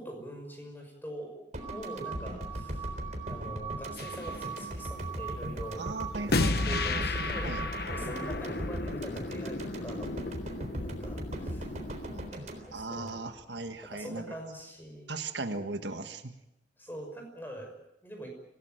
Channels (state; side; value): normal; both; correlation 0.52